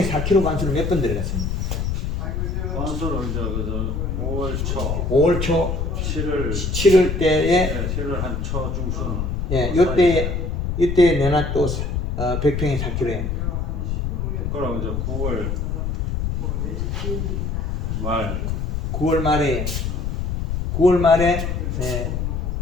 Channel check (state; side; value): noise; left; rumble, 1 dB below the sound